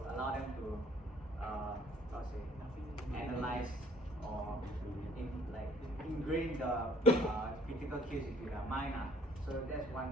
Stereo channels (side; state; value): both; normal; correlation 0.58